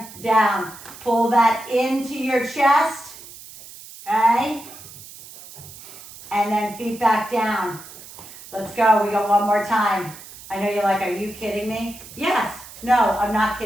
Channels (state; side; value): noise; right; hiss, 17 dB below the sound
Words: down. Pull that into your chest. Okay. And then feet back down. Let's go. We go one more time. I know you're like, are you kidding me? Yes. No, I'm not